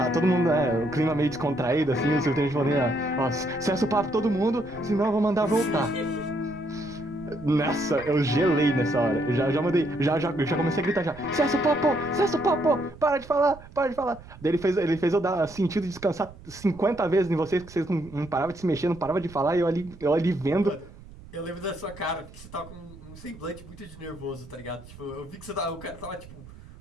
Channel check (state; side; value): noise; right; rumble, 19 dB below the sound